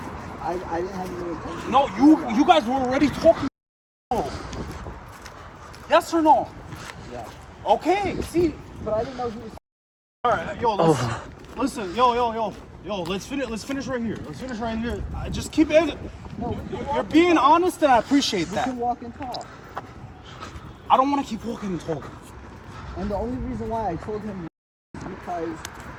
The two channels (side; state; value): both; identical; correlation 1.00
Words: I didn't have any intention. No, you guys were already talking. Yes or no? Yeah. Okay, see. But I didn't know he was. All right, yo, listen, yo, let's finish right here. Let's finish right here. Just keep it. No, You're being honest, and I appreciate we that. can walk and talk. I don't want to keep walking and talking. And the only reason why I told him was because